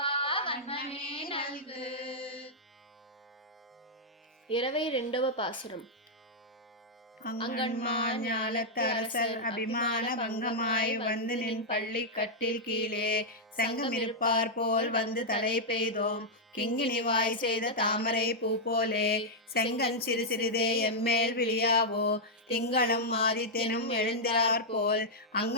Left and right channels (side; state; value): both; normal; correlation -0.05